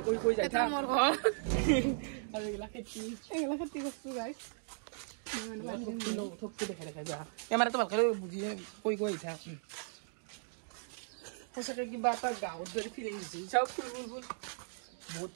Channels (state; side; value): silent; left; digital silence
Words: কৈ যায় মোৰ ঘৰ আৰু এইগিলা খেতি কৰিছোঁ গাইছ দেখাই যা কেমেৰাটো ভালকৈ বুজি কৈ আহিছা সঁচাকৈ কিবা এটা গাঁৱত যদি ফিলিং দিছে চাওক ফুল বহুত